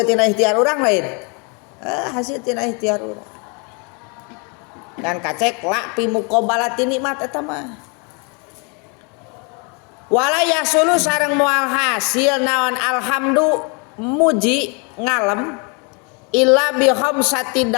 tina ikhtiar urang lain, hasil tina ikhtiar urang. Dan kacek la pi muqabalati nikmat eta mah. Wala yasulu sareng moal hasil naon alhamdu muji ngalem illa bi khamsati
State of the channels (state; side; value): quieter; right; 33.9 dB